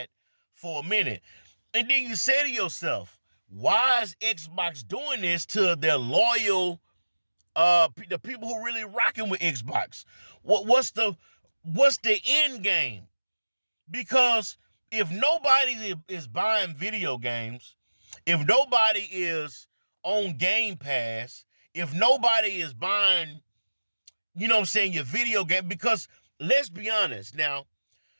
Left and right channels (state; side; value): inverted; both; correlation -1.00